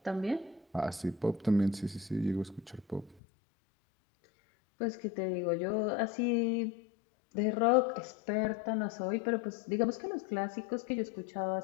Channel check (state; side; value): drops out; right; at 3.2 s